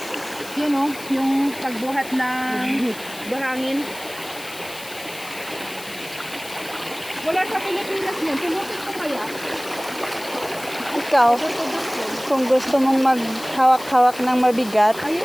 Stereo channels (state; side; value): noise; left; hiss, 15 dB below the sound